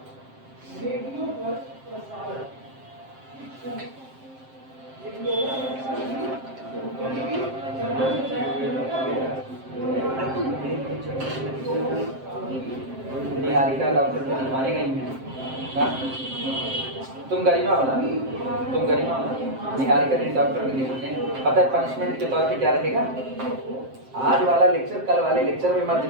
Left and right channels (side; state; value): left; late; 7.6 ms